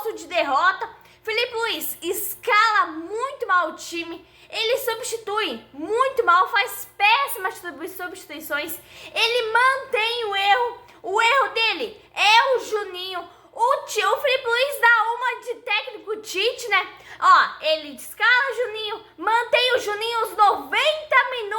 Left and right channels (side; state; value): both; identical; correlation 1.00